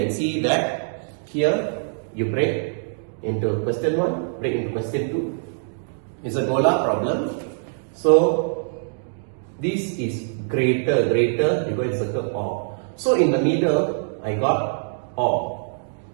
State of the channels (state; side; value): silent; left; digital silence